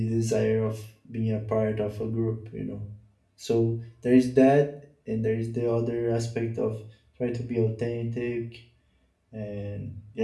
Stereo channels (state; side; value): identical; both; correlation 1.00